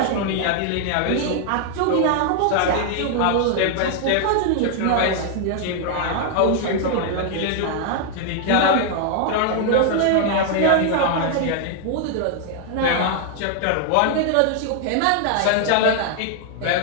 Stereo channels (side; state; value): both; different; correlation 0.00